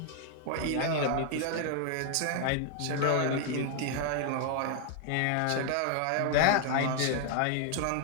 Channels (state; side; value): different; both; correlation 0.00